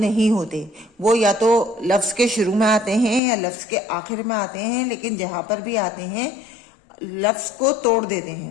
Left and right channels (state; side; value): drops out; right; at 3.2 s